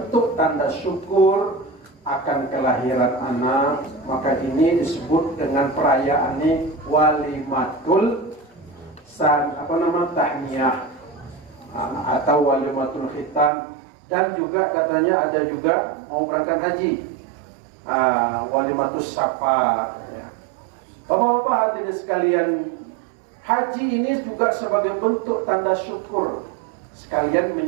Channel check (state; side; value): drops out; left; at 13.5 s